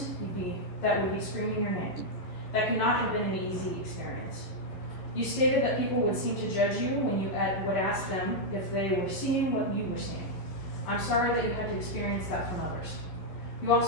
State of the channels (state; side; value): late; right; 11 ms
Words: that would be screaming your name. That could not have been an easy experience. You stated that people would seem to judge you when you would ask them if they were seeing what you were seeing. I'm sorry that you had to experience that from others. You